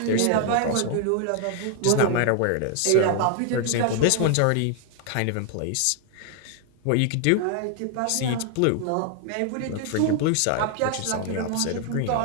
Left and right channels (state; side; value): different; both; correlation 0.00